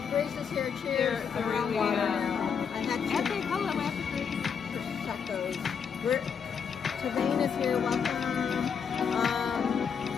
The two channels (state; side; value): quieter; right; 6.7 dB